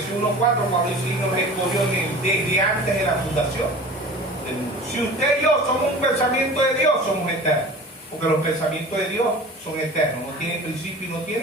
1:4, cuando dice que nos escogió desde antes de la fundación del mundo. Si usted y yo somos un pensamiento de Dios, somos eternos. Porque los pensamientos de Dios son eternos, no tienen principio y no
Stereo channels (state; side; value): normal; both; correlation 0.39